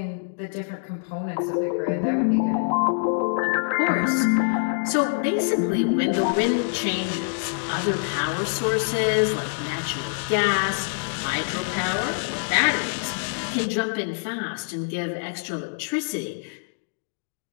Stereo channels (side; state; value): right; silent; digital silence